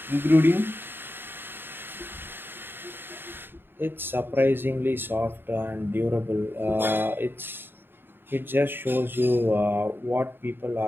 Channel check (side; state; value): left; late; 0.099 ms